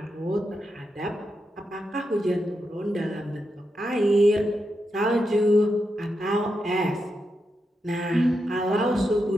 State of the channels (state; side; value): normal; both; correlation 0.86